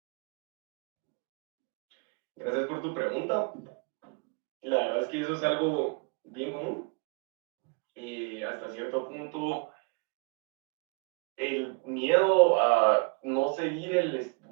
Gracias por tu pregunta. La verdad es que eso es algo bien común. Hasta cierto punto, el miedo a no seguir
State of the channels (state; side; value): quieter; left; 32.0 dB